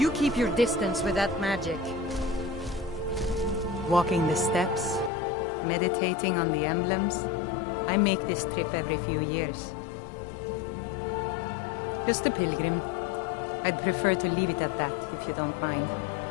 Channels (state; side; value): drops out; right; at 5.1 s